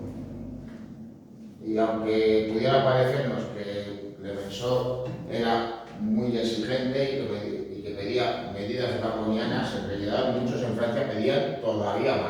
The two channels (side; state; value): both; identical; correlation 1.00